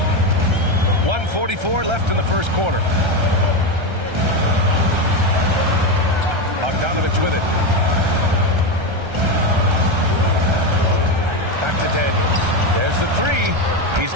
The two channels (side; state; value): left; late; 1.3 ms